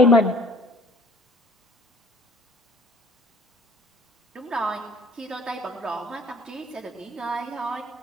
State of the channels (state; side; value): normal; both; correlation 0.53